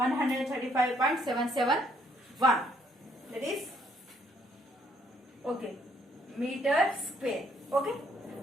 That is okay meter square. Okay.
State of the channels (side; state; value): both; normal; correlation 0.68